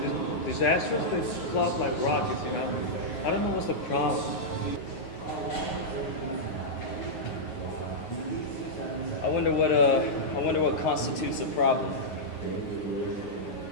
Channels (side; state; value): right; late; 9.2 ms